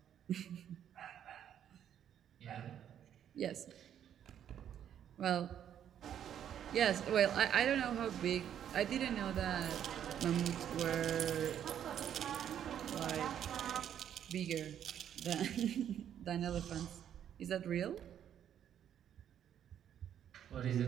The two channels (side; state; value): left; quieter; 9.7 dB